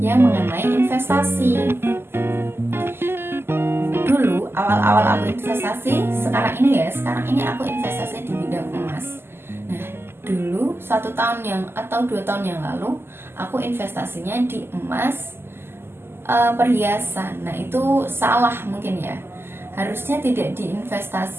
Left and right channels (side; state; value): left; late; 0.12 ms